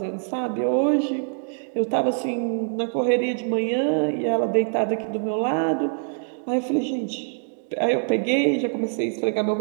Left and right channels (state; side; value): silent; left; digital silence